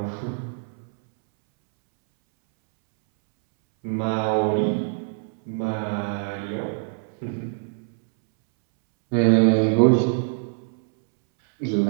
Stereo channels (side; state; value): left; silent; 63 dB below the other